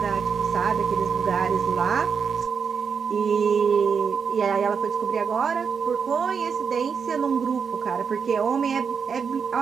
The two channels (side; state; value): left; quieter; 6.3 dB